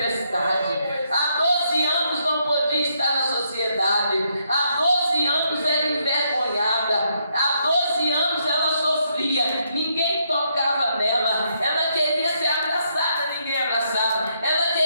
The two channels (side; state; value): both; inverted; correlation -0.75